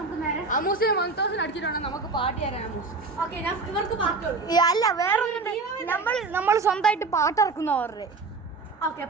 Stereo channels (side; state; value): left; quieter; 3.9 dB